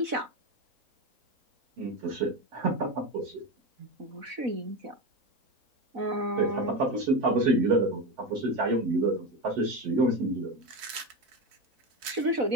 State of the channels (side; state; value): left; late; 4.6 ms